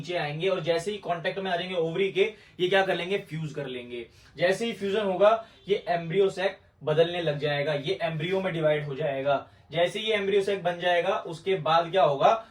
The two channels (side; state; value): both; identical; correlation 1.00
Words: आएंगे और जैसे ही कांटेक्ट में आ जाएंगे ओवरी के, ये क्या कर लेंगे, फ्यूज कर लेंगे। जैसे ही फ्यूजन होगा ये एम्ब्रियो सैक बदलने लग जाएगा, ये एम्ब्रियो में डिवाइड हो जाएगा। जैसे ये एम्ब्रियो सैक बन जाएगा उसके बाद क्या होगा,